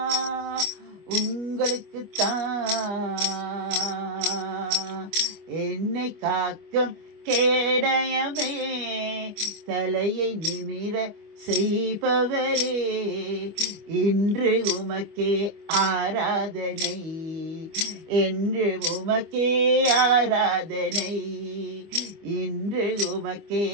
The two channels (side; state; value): left; late; 25 ms